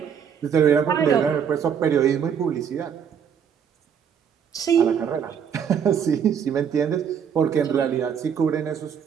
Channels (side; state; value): left; quieter; 7.8 dB